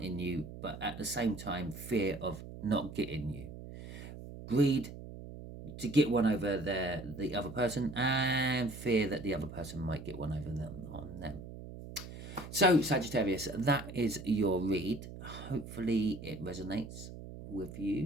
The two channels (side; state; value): right; noise; hum, 12 dB below the sound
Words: you, but at the same time fear of not getting you. Greed to get one over the other person, and fear that the other person might get one over them on them. So Sagittarius, that is your read. Hopefully it resonates with